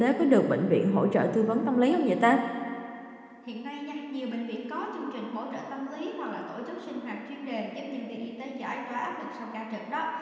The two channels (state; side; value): identical; both; correlation 1.00